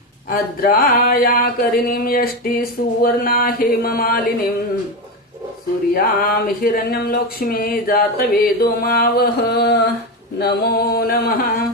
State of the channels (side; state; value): both; normal; correlation 0.15